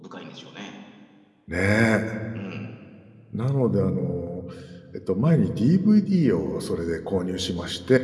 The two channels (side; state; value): both; identical; correlation 1.00